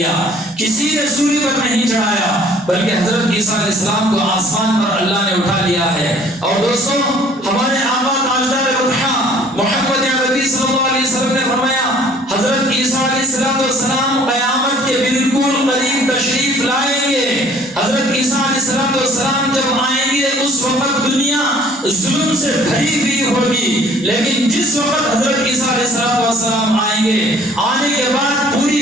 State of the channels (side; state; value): both; normal; correlation 0.55